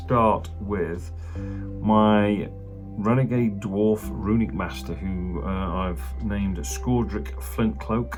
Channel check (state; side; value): identical; both; correlation 1.00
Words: with my Renegade Dwarf Runic Master, who I've named Skordric